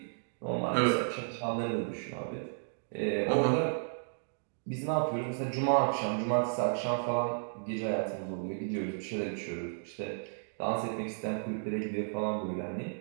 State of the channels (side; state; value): left; silent; digital silence